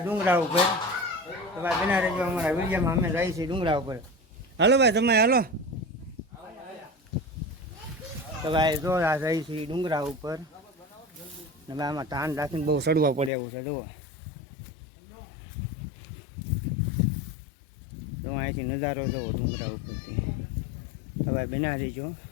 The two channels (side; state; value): right; drops out; at 13.3 s